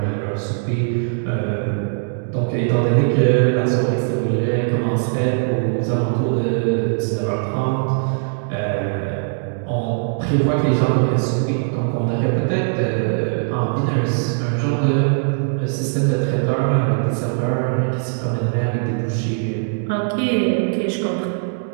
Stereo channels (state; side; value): silent; left; 66 dB below the other